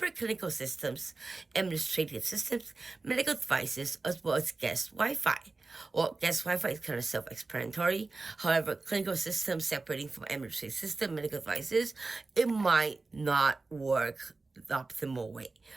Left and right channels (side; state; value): left; quieter; 3.6 dB